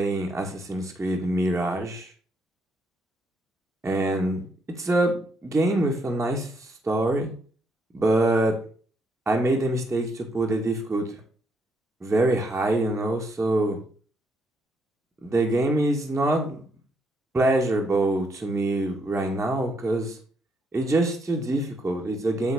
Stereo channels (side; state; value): both; normal; correlation 0.75